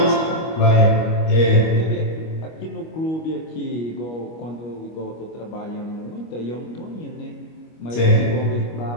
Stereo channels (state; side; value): late; right; 25 ms